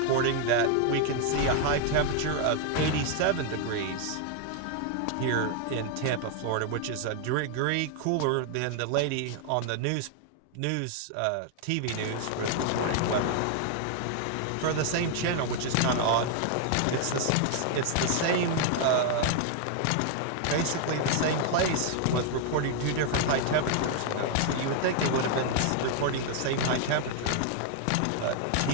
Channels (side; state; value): both; different; correlation 0.00